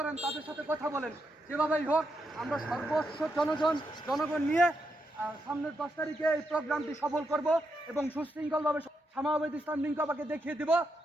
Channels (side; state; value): both; normal; correlation 0.82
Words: তাদের সাথে কথা বলেন। যেভাবেই হোক আমরা সর্বস্ব জনগণ নিয়ে সামনের 10 তারিখে এই প্রোগ্রামটি সফল করব এবং সুশৃঙ্খলভাবে শামাওয়াদ ইসলাম লিঙ্কবাকে দেখিয়ে দিব